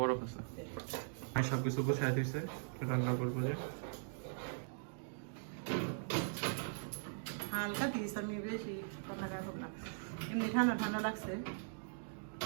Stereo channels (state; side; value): silent; left; digital silence